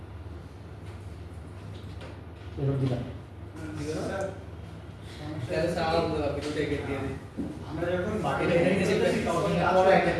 এরকম দিবেন তাহলে সারা ভিডিওতে গেট দিয়ে দিই। আমরা যখন বাকিটা তখন আরো একটা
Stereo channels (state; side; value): identical; both; correlation 1.00